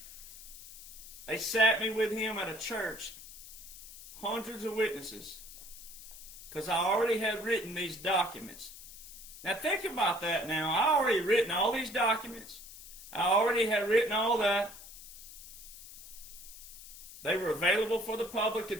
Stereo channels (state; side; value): noise; left; hiss, 15 dB below the sound